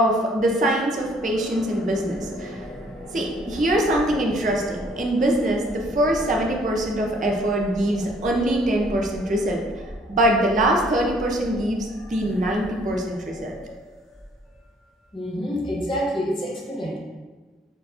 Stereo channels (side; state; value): both; normal; correlation 0.61